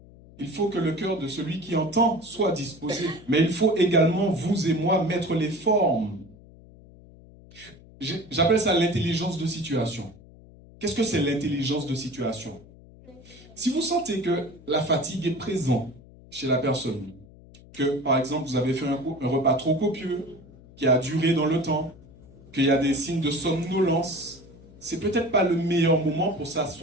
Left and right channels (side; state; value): left; noise; hum, 22 dB below the sound